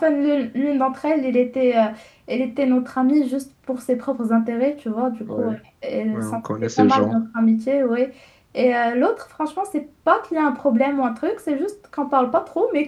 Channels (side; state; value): both; identical; correlation 1.00